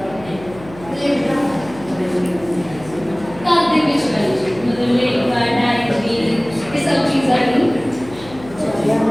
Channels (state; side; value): noise; left; hum, 18 dB below the sound